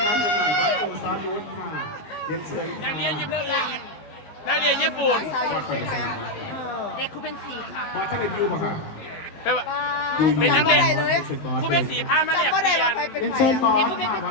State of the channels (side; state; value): right; late; 18 ms